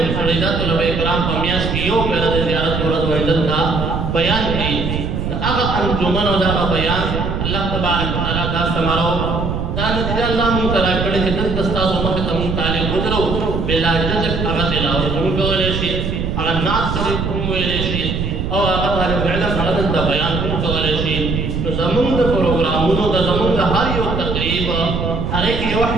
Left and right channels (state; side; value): noise; right; rumble, 2 dB below the sound